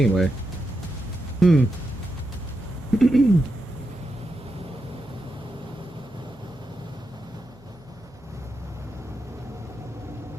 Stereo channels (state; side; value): noise; right; hum, 25 dB below the sound